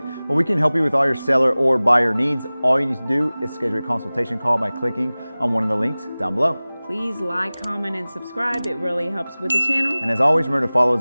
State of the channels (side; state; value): both; inverted; correlation -0.99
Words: Well, we can help you with all your seller or buyer needs. All you need to do is schedule a consultation call by clicking on one of the links down below. Please like, comment, and subscribe. It really helps with the channel. And as always, remember to follow